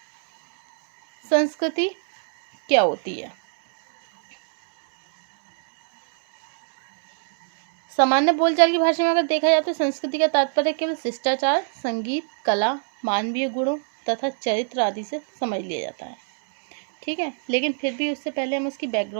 संस्कृति क्या होती है? सामान्य बोलचाल की भाषा में अगर देखा जाए तो संस्कृति का तात्पर्य केवल शिष्टाचार, संगीत, कला, मानवीय गुणों तथा चरित्र आदि से समझ लिया जाता है. ठीक है, लेकिन फिर भी उससे पहले हम उसकी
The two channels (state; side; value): silent; left; digital silence